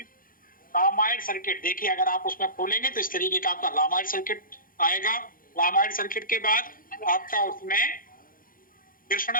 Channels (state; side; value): late; right; 0.41 ms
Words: रामायण सर्किट। देखिए अगर आप उसमें खोलेंगे तो इस तरीके का आपका रामायण सर्किट आएगा। रामायण सर्किट के बाद आपका उसमें